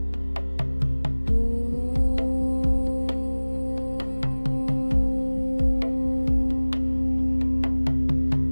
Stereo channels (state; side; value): inverted; both; correlation -1.00